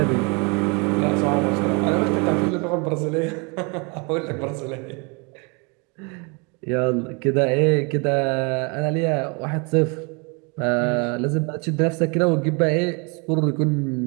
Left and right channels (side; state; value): left; quieter; 32.0 dB